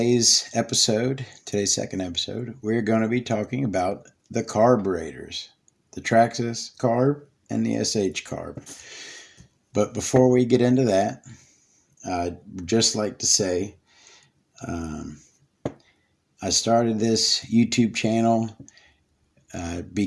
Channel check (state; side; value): identical; both; correlation 1.00